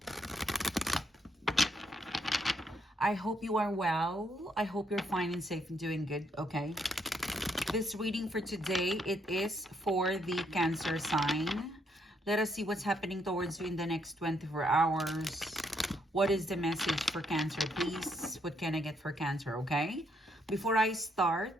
I hope you are well. I hope you're fine and safe and doing good, okay? This reading for today, it is for the Cancer sign. Let us see what's happening towards you in the next 24 hours. What is the message for Cancer, please? What can I get for Cancer, okay? Before I start,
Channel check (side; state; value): both; normal; correlation 0.73